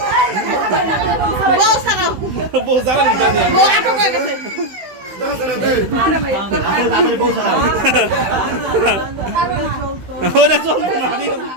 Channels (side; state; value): left; late; 16 ms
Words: বউ জ্বালা দিতে দিয়ে। তাড়াতাড়ি কেউ ছাড়াও ওটা চলতো না, ঠিক